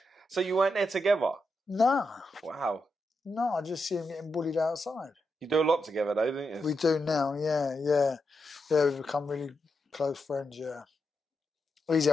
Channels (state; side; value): normal; both; correlation 0.85